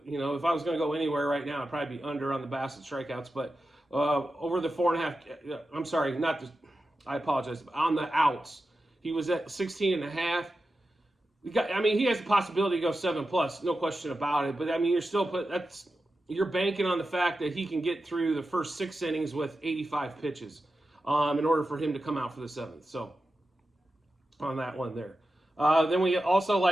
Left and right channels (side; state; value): both; normal; correlation 0.92